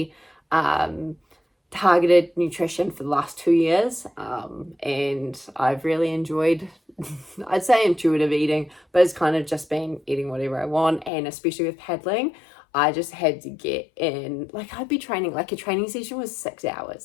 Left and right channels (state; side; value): drops out; right; at 11.1 s